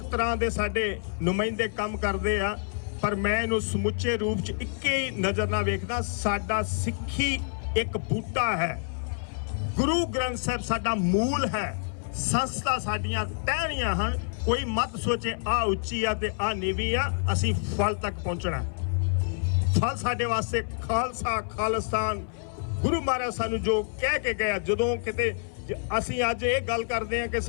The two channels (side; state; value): right; silent; 60 dB below the other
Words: ਤਰ੍ਹਾਂ ਦੇ ਸਾਡੇ ਨੁਮਾਇੰਦੇ ਕੰਮ ਕਰਦੇ ਆ, ਪਰ ਮੈਂ ਇਹਨੂੰ ਸਮੁੱਚੇ ਰੂਪ 'ਚ ਇੱਕੇ ਹੀ ਨਜ਼ਰ ਨਾਲ ਵੇਖਦਾ। ਸਾਡਾ ਸਿੱਖੀ ਇੱਕ ਬੂਟਾ ਹੈ, ਗੁਰੂ ਗ੍ਰੰਥ ਸਾਹਿਬ ਸਾਡਾ ਮੂਲ ਹੈ, ਸੰਸਥਾ ਸਾਡੀਆਂ ਟਹਿਣੀਆਂ ਹਨ। ਕੋਈ ਮਤ ਸੋਚੇ ਆ ਉੱਚੀ ਆ ਤੇ ਆ ਨੀਵੀਂ ਆ, ਅਸੀਂ ਫਲ ਤੱਕ ਪਹੁੰਚਣਾ। ਫਲ ਸਾਡੇ ਵਾਸਤੇ ਖਾਲਸਾ, ਖਾਲਿਸਤਾਨ, ਗੁਰੂ ਮਹਾਰਾਜ ਸਾਨੂੰ ਜੋ ਕਹਿ ਕੇ ਗਿਆ। ਜਦੋਂ ਕਿਤੇ ਅਸੀਂ ਅੱਜ ਇਹ ਗੱਲ ਕਰਦੇ ਹਾਂ ਕਿ